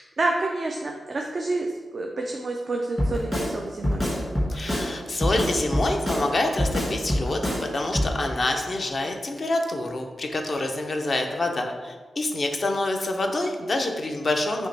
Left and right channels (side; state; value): both; normal; correlation 0.91